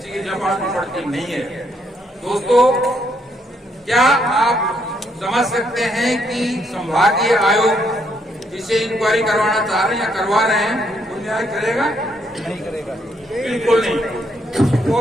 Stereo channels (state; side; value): normal; both; correlation 0.73